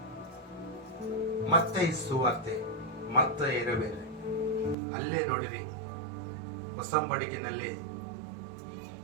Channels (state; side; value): drops out; left; at 4.8 s